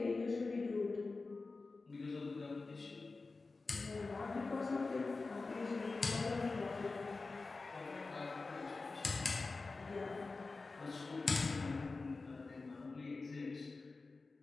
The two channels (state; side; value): quieter; right; 3.8 dB